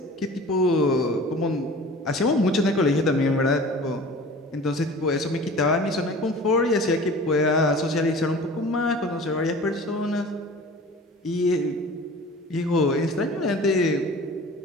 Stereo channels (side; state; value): both; normal; correlation 0.42